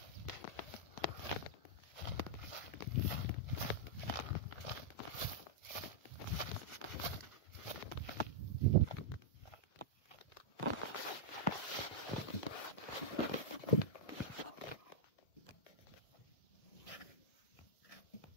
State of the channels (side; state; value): right; late; 1.8 ms